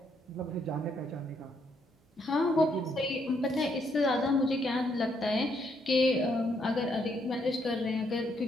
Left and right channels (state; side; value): normal; both; correlation 0.74